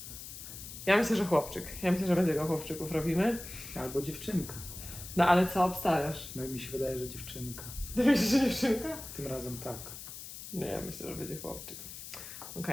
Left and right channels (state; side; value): noise; left; hiss, 11 dB below the sound